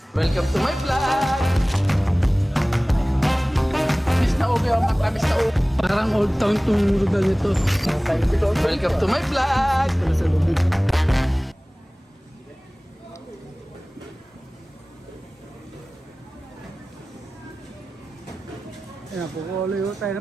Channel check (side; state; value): both; normal; correlation 0.98